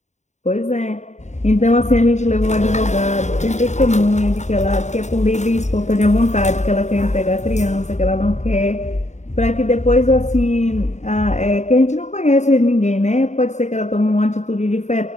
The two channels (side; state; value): right; late; 0.34 ms